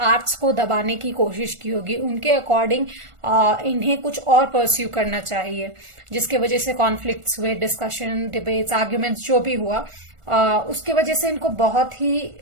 आर्ट्स को दबाने की कोशिश की होगी। उनके अकॉर्डिंग इन्हें कुछ और परस्यू करना चाहिए, जिसके वजह से कॉन्फ्लिक्ट्स हुए, डिस्कशन, डिबेट्स, आर्ग्यूमेंट्स जो भी हुआ, उसके वजह से इनको बहुत ही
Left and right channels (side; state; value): left; late; 1.4 ms